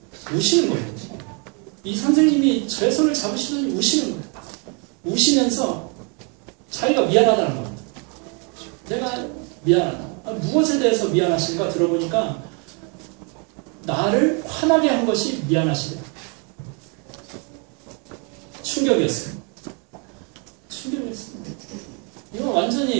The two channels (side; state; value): left; quieter; 35.9 dB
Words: 우시는 거예요. 이 선생님이 저의 손을 잡으시더니 우시는 거예요. 우시면서 자기가 미안하다는 겁니다. 내가 미안하다. 무엇에 대해서 미안하신가 들어보니까 나를 화나게 한 것이 미안하시대요. 충격이었어요. 이건